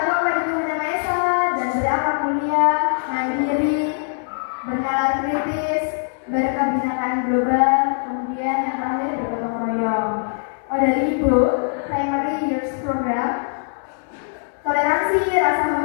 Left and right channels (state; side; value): silent; right; digital silence